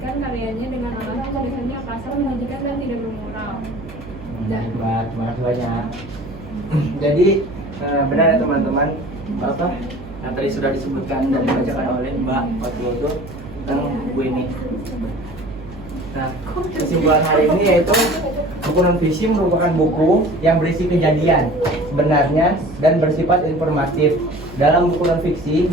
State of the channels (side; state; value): right; noise; hum, 15 dB below the sound